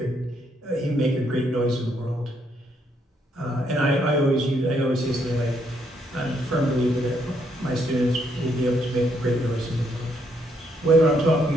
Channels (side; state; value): both; normal; correlation 0.73